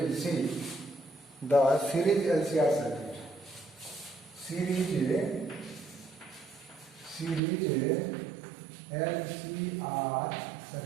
will see the series LCR circuit. Series LCR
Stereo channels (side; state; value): left; drops out; at 7.4 s